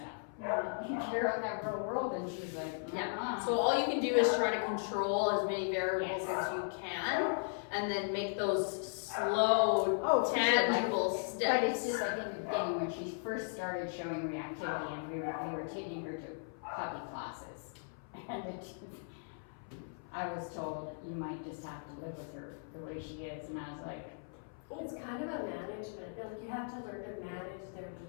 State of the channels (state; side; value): silent; right; 53 dB below the other